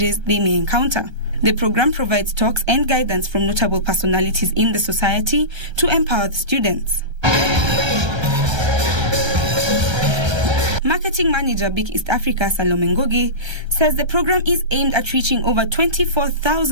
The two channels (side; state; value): left; late; 1.3 ms